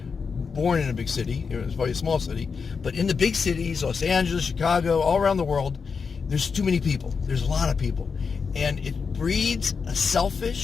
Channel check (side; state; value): right; quieter; 5.5 dB